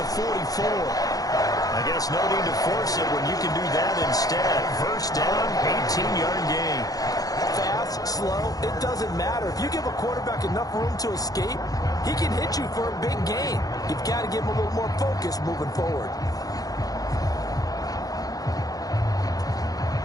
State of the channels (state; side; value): late; right; 0.18 ms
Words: 44. I guess no need to force it when you can do that instead. 1st down, 18-yard gain. Fast, slow, it doesn't matter. If you give a quarterback enough room to escape, he can hit you for a big gain. You've got to give him a little more focus moving forward.